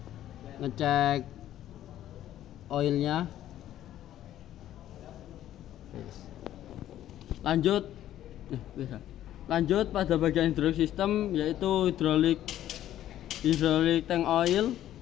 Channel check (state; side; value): quieter; right; 12.4 dB